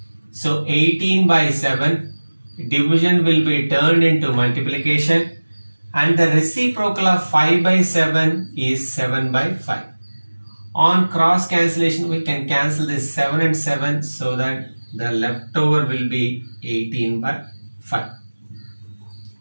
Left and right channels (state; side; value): inverted; both; correlation -1.00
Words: So 18 by 7, division will be turned into multiplication, and the reciprocal of 5 by 7 is 7 by 5. On cross cancellation, we can cancel this 7 and 7, so that the leftover will be 18 by 5.